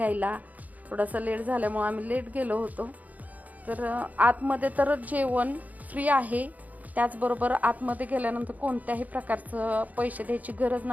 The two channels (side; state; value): left; late; 0.077 ms